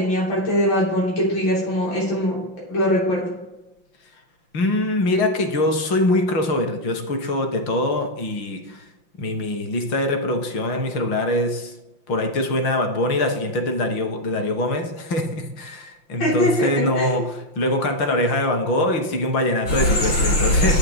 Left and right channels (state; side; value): late; right; 5.8 ms